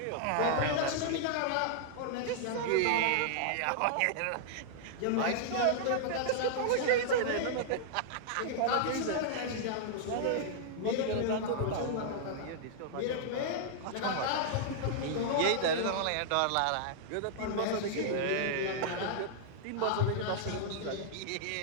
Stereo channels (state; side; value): different; both; correlation -0.01